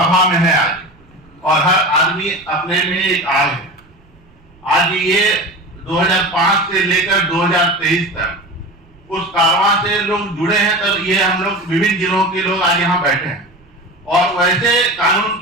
में है आज, और हर आदमी अपने में एक आग है। आज ये 2005 से लेकर 2023 तक उस कारवां से लोग जुड़े हैं, तब ये हम लोग विभिन्न जिलों के लोग आज यहाँ बैठे हैं। और वैसे कानून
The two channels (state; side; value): noise; right; rumble, 29 dB below the sound